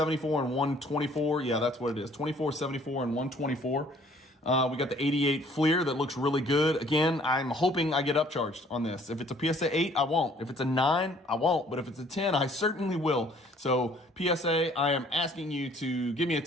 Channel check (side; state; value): both; normal; correlation 0.58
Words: and 124. Yeah, that's what it is. 24, 74, and 124. We got the 88 Fleer that looks really good. Again, I'm hoping I get upcharged on this. If it's a PSA 8, I won't. If it's a 9, I won't. But if it's a 10, I certainly will. So PSA, I am asking you to give me a